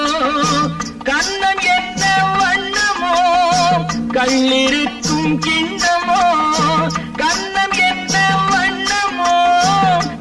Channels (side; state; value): both; identical; correlation 1.00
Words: கண்ணம் என்ன வண்ணமோ, கள்ளிருக்கும் கிண்ணமோ. கண்ணம் என்ன வண்ணமோ,